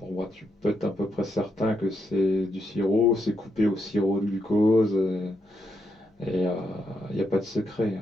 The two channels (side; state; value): both; normal; correlation 0.80